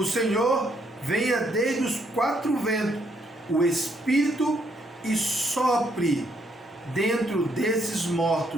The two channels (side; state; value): both; normal; correlation 0.72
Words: Senhor, venha desde os quatro ventos, o Espírito, e sopre dentro desses